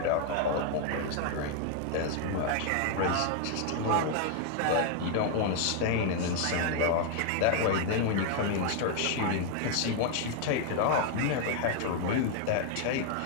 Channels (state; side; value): different; both; correlation 0.00